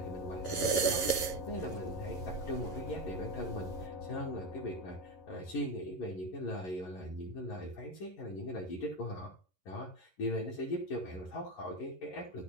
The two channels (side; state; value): right; late; 11 ms